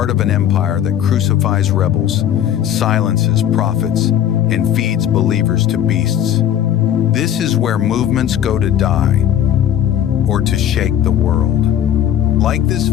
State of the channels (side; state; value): right; quieter; 10.4 dB